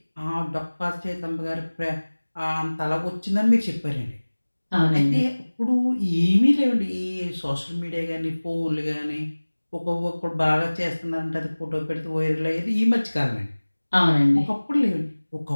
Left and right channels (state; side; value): inverted; both; correlation -1.00